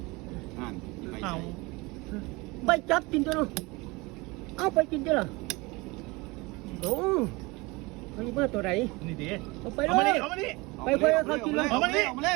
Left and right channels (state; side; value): quieter; left; 24.4 dB